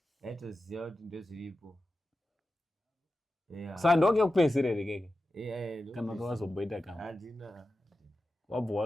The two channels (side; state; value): both; normal; correlation 0.92